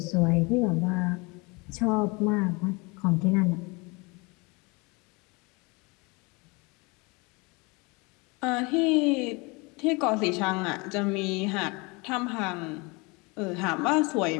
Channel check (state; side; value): quieter; right; 27.6 dB